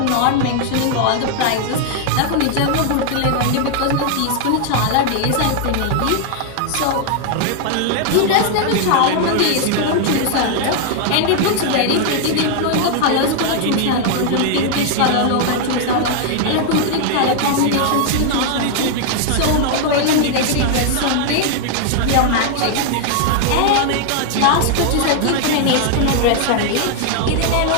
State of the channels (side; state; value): both; different; correlation 0.00